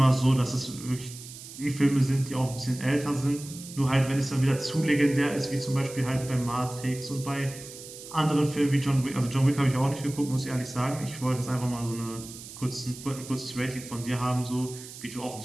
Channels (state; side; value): noise; right; hiss, 14 dB below the sound